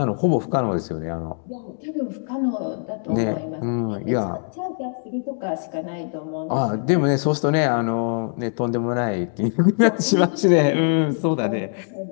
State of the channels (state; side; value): silent; right; 62 dB below the other